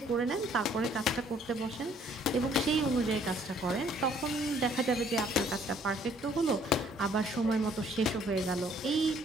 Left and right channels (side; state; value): both; normal; correlation 0.61